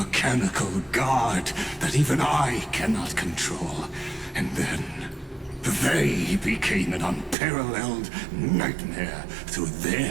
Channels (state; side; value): drops out; left; at 7.4 s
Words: guard that even I cannot control, and then they became an unparalleled nightmare through